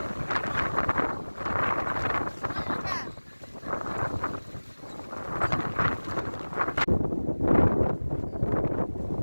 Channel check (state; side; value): inverted; both; correlation -1.00